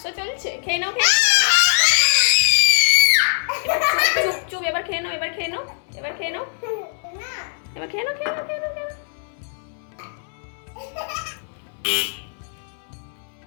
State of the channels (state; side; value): silent; right; 64 dB below the other